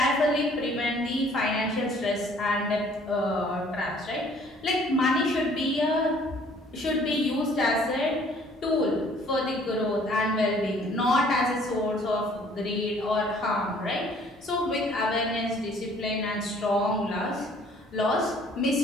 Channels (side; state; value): both; normal; correlation 0.57